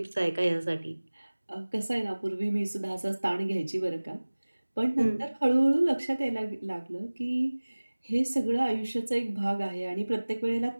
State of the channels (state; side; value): inverted; both; correlation -1.00